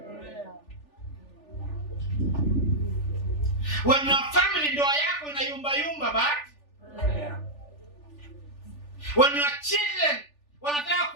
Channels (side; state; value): right; late; 3.4 ms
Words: when your family, ndoa yako inayumba, but when your children wanataka